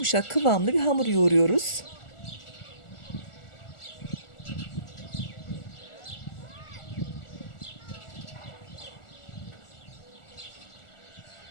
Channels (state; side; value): late; right; 1.4 ms